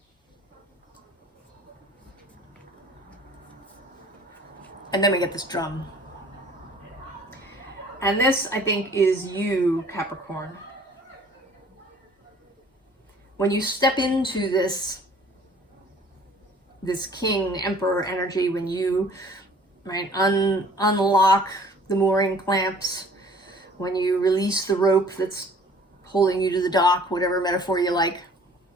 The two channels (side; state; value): both; normal; correlation 0.53